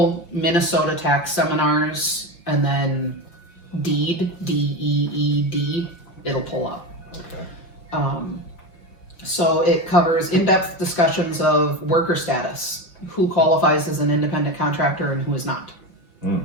Minnesota tax seminars and then DEED, D-E-E-D, it'll pull up. Okay. So it covers in-depth discussions of worker status, who qualifies as an independent contractor and who is not.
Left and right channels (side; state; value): right; late; 5.7 ms